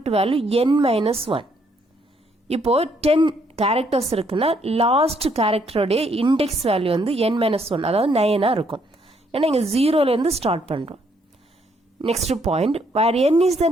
வேல்யூ n-1. இப்போ 10 கேரக்டர்ஸ் இருக்குன்னா லாஸ்ட் கேரக்டரோடைய இண்டெக்ஸ் வேல்யூ வந்து n-1, அதாவது 9 இருக்கும். ஏன்னா இங்கே 0லேருந்து ஸ்டார்ட் பண்ணுறோம். Next point, where n is the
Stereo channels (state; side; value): normal; both; correlation 0.70